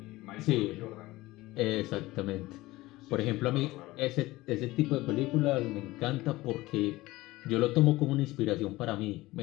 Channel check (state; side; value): quieter; right; 18.9 dB